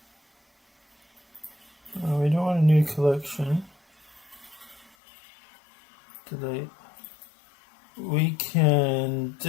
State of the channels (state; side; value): drops out; right; at 4.9 s